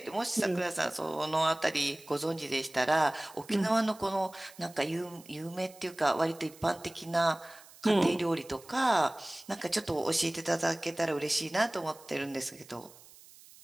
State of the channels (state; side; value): noise; right; hiss, 22 dB below the sound